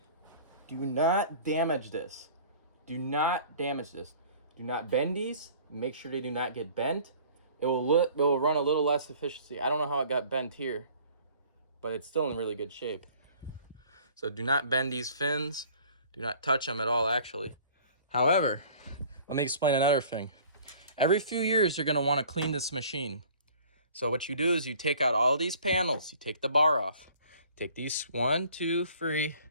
do not damage this. Do not damage this. Do not bend these. Make sure they do not get bent. It will run a little less efficiency. I don't know how it got bent here, but it's still in really good shape. So do not bend these fins. Do not touch them at all, actually. However, let me explain another thing. Every few years, you're going to want to clean this machine. So what you do is you take out all these panels. You take the bar off. Take these 1, 2, 3,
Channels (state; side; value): inverted; both; correlation -0.50